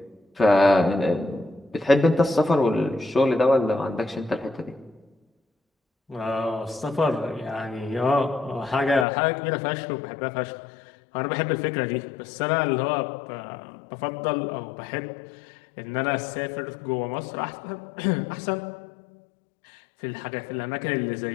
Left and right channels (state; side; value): drops out; right; at 9.1 s